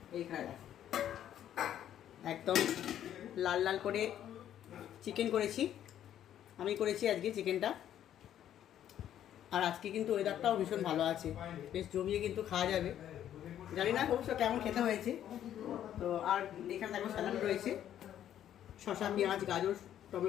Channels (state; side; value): quieter; right; 10.9 dB